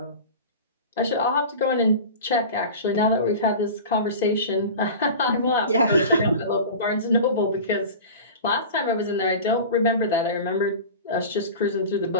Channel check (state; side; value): inverted; both; correlation -0.33